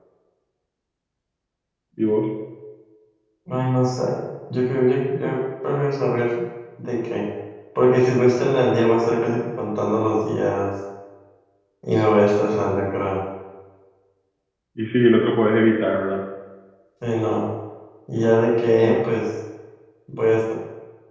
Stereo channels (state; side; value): identical; both; correlation 1.00